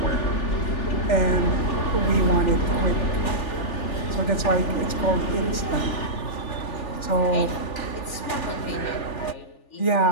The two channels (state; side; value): late; right; 3.4 ms